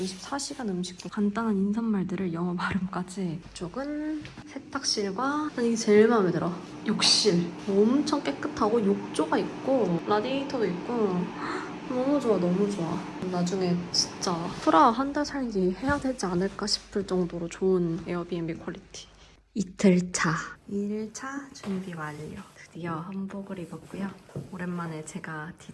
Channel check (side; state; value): both; identical; correlation 1.00